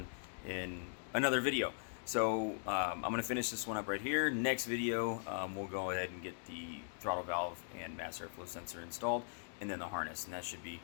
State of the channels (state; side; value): silent; right; digital silence